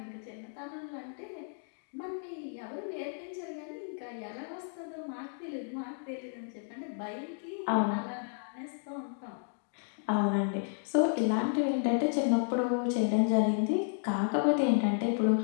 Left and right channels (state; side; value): silent; right; digital silence